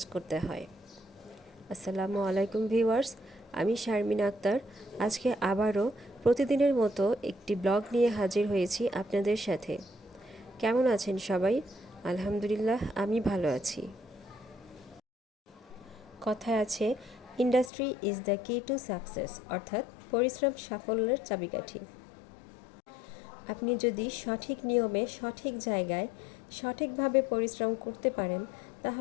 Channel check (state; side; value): drops out; right; at 17.7 s